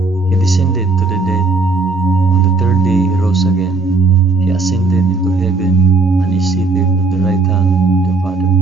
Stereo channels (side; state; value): left; quieter; 3.7 dB